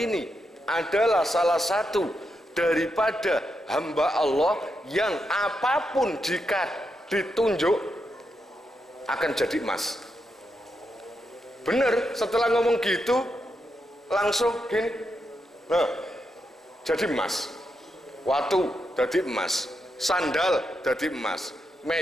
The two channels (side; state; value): both; normal; correlation 0.84